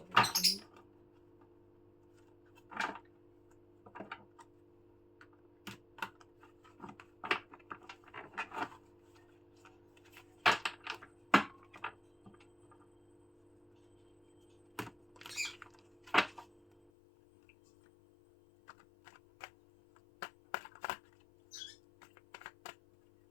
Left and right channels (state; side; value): drops out; right; at 16.9 s